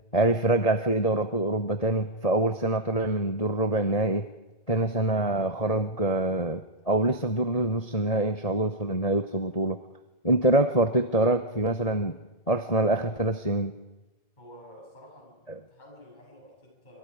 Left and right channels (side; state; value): right; late; 1.8 ms